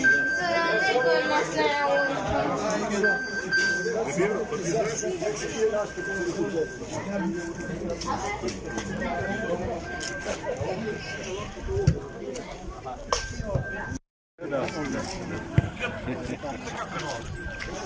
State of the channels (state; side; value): identical; both; correlation 1.00